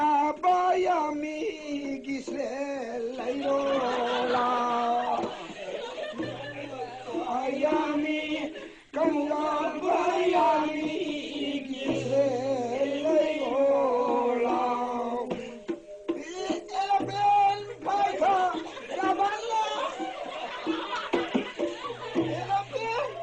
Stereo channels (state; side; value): identical; both; correlation 1.00